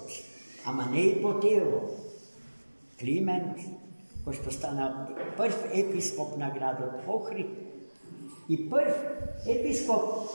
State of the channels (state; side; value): inverted; both; correlation -1.00